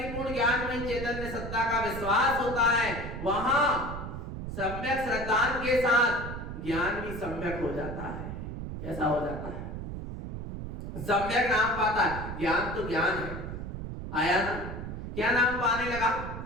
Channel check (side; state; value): right; noise; rumble, 7 dB below the sound